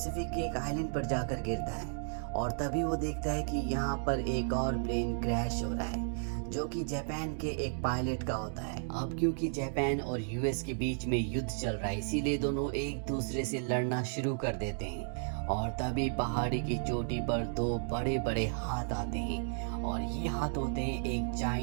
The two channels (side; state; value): left; silent; digital silence